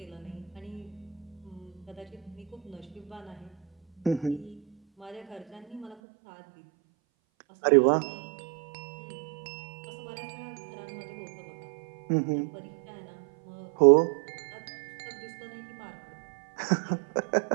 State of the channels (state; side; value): drops out; left; at 6.0 s